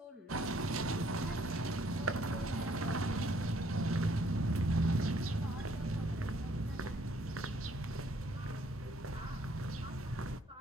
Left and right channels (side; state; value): both; normal; correlation 0.65